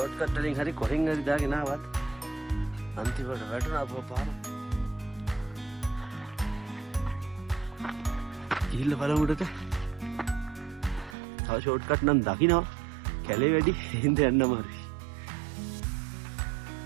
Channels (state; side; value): drops out; left; at 11.2 s